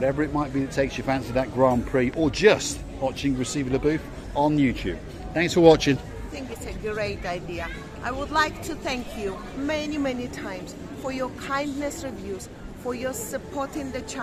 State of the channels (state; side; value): identical; both; correlation 1.00